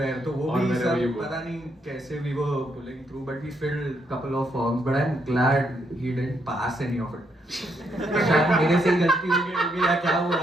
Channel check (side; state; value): both; normal; correlation 0.76